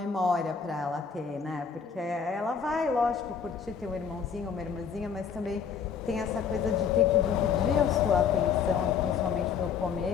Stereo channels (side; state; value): right; quieter; 6.7 dB